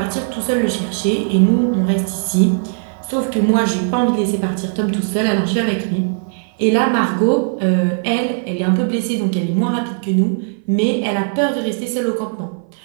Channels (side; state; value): left; silent; 59 dB below the other